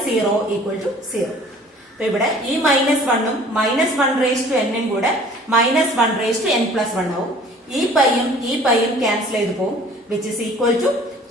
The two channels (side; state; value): both; normal; correlation 0.50